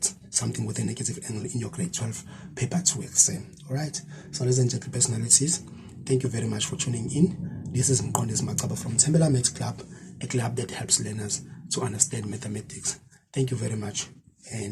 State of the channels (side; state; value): both; identical; correlation 1.00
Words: something with a negative angle in your grade 12 paper 2 exam. All right. So ladies and gentlemen, personalities, thank you very much for tuning in. This is Mkondes Makaba from Tembela Maths Club, a club that helps learners to understand mathematics. Thank you very much,